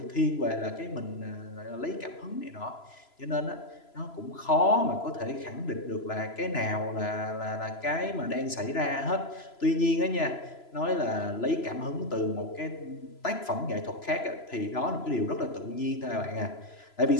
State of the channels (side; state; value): right; late; 3.0 ms